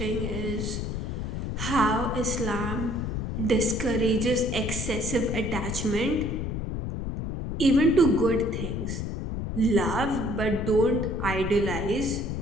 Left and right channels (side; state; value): left; noise; rumble, 3 dB below the sound